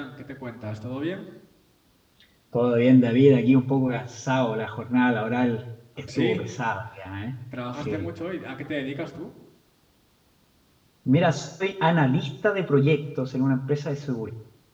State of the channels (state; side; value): identical; both; correlation 1.00